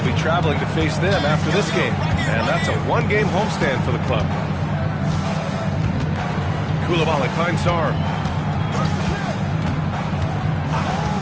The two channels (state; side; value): identical; both; correlation 1.00